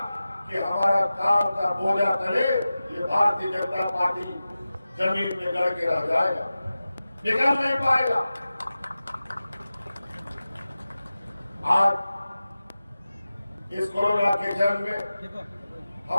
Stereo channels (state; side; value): inverted; both; correlation -0.95